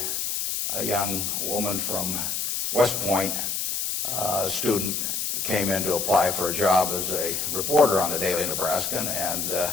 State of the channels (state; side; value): noise; left; hiss, 1 dB below the sound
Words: a young woman from West Point, a student, came in to apply for a job as a reporter on the Daily Nebraskan,